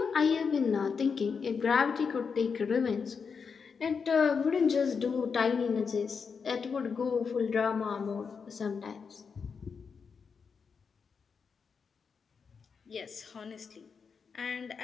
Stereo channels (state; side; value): quieter; right; 5.8 dB